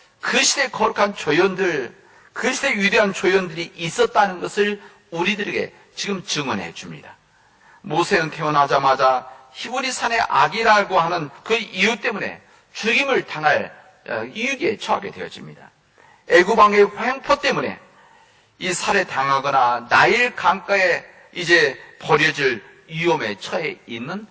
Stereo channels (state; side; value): identical; both; correlation 1.00